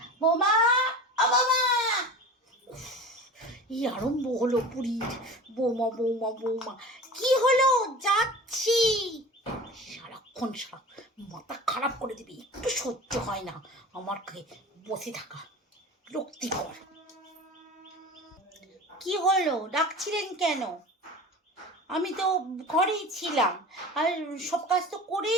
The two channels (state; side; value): normal; both; correlation 0.36